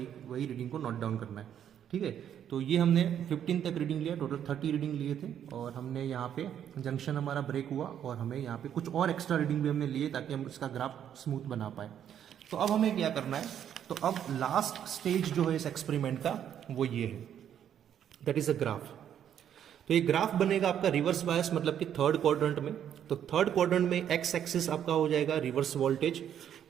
रीडिंग को नोट डाउन करना है, ठीक है। तो ये हमने 15 तक रीडिंग लिया, टोटल 30 रीडिंग लिए थे, और हमने यहाँ पे जंक्शन हमारा ब्रेक हुआ और हमें यहाँ पे कुछ और एक्स्ट्रा रीडिंग भी हमने लिए ताकि हम इसका ग्राफ स्मूथ बना पाए। तो अब हमें क्या करना है, तो अब लास्ट स्टेज जो है इस एक्सपेरिमेंट का वो ये है, दैट इज अ ग्राफ। तो ये ग्राफ बनेगा आपका रिवर्स बायस मतलब कि थर्ड क्वाड्रेंट में। तो थर्ड क्वाड्रेंट में एक्स एक्सिस आपका हो जाएगा रिवर्स वोल्टेज,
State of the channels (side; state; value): left; quieter; 9.6 dB